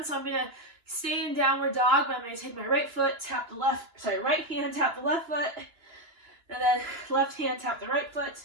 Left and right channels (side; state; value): left; late; 2.9 ms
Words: So I'm going to stay in downward dog, but I'm going to take my right hand, tap the left foot, and then left hand, tap the right foot.